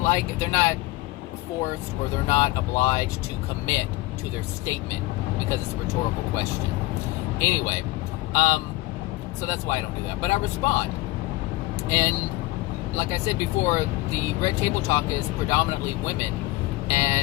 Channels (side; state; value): right; quieter; 19.7 dB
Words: they're not forced or they're not obliged to commit to their statement because it's a rhetorical question. Anyway, so that's why I don't do that. But I respond. And like I said before, the Red Table Talk is predominantly women.